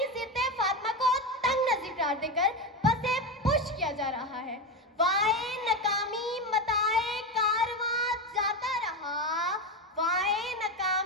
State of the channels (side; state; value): both; normal; correlation 0.16